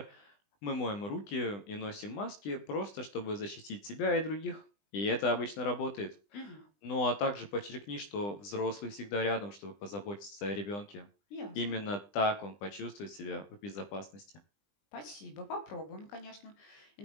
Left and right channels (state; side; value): late; right; 20 ms